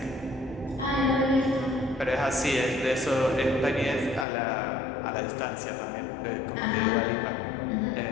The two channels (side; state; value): right; drops out; at 4.2 s